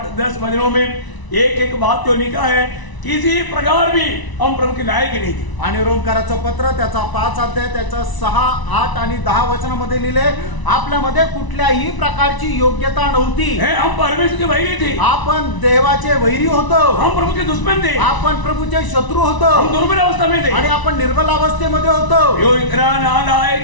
10 वचनों में एक एक बात जो लिखा है, किसी प्रकार भी हम प्रभु के लायक नहीं थे. आणि रोमकाराचं पत्र त्याचा 5 अध्याय त्याचा 6, 8 आणि 10 वचनामध्ये लिहिले, आपल्यामध्ये कुठल्याही प्रकारची योग्यता नव्हती, हम परमेश्वर के वैरी थे, आपण देवाचे वैरी होतो, हम प्रभु के दुश्मन थे, आपण प्रभूचे शत्रू होतो, हम दुर्बल अवस्था में थे, आणि आपण निर्बल अवस्थेमध्ये होतो. यो इतना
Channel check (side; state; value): right; late; 1.0 ms